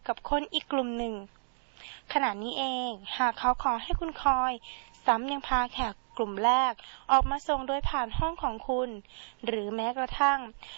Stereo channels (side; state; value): left; silent; digital silence